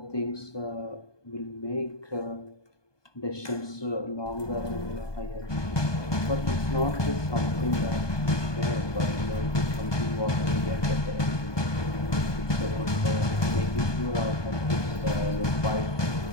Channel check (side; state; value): right; late; 1.2 ms